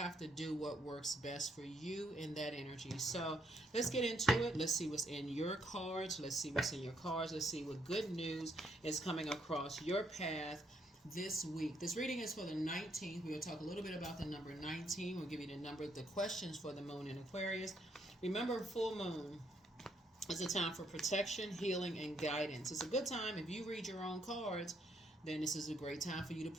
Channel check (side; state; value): both; normal; correlation 0.73